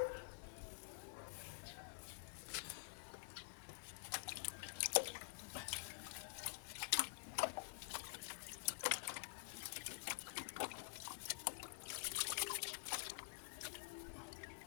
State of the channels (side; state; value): right; silent; digital silence